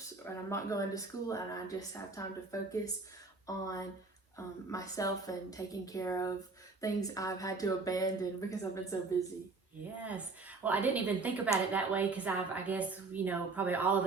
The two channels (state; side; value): quieter; left; 4.0 dB